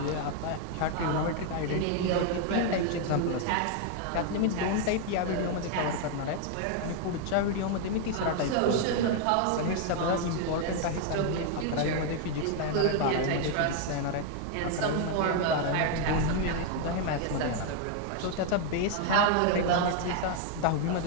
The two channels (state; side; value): different; both; correlation 0.00